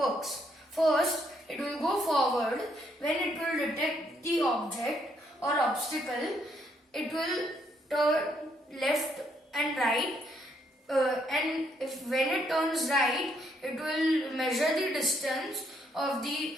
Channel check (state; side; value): normal; both; correlation 0.72